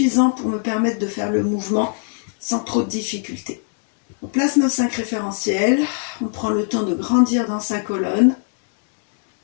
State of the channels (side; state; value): right; silent; digital silence